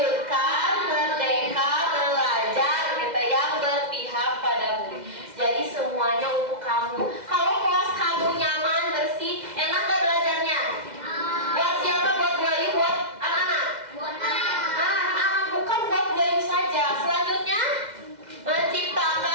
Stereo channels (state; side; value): late; left; 2.0 ms